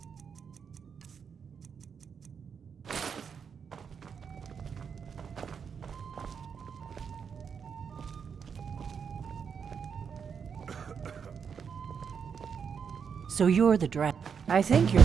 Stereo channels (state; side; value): quieter; left; 6.7 dB